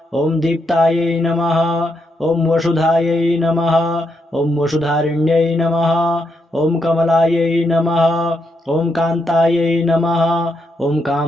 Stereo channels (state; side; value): normal; both; correlation 0.80